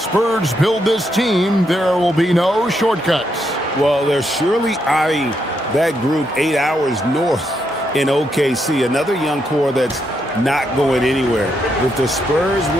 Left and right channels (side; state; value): both; normal; correlation 0.79